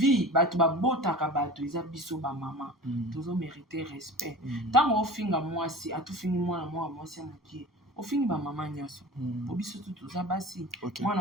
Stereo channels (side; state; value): both; normal; correlation 0.37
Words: batu ba bota ka batu isa biso ba maman. Tous ont mérité respect. Tant au finga moi si a tout fini moi si moki. Au fini ba maman nyoso obiso tout ça basi